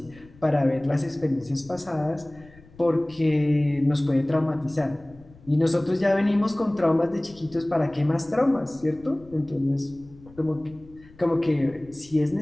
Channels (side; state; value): left; noise; rumble, 24 dB below the sound